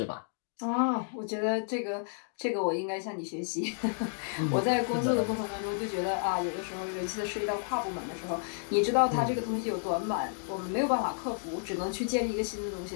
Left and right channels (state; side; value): silent; right; digital silence